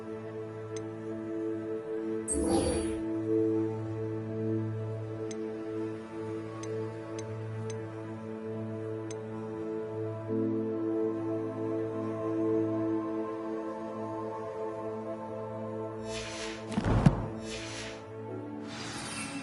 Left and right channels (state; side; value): identical; both; correlation 1.00